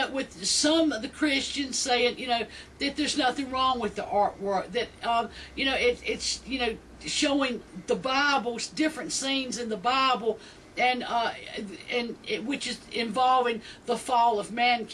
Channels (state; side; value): identical; both; correlation 1.00